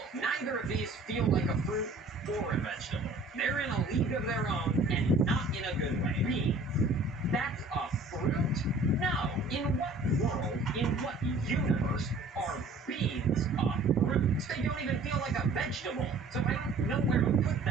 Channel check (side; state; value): left; quieter; 3.1 dB